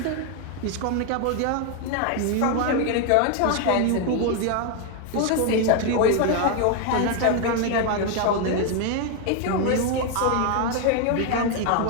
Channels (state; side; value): different; both; correlation 0.01